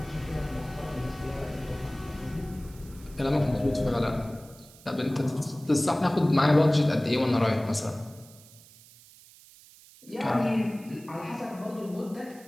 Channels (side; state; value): right; noise; hiss, 23 dB below the sound